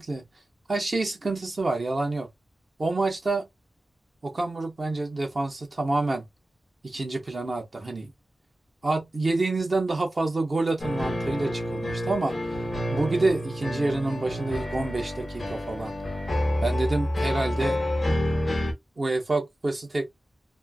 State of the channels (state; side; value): normal; both; correlation 0.95